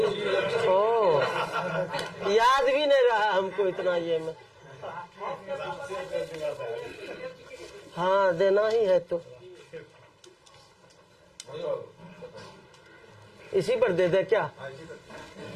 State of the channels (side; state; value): both; identical; correlation 1.00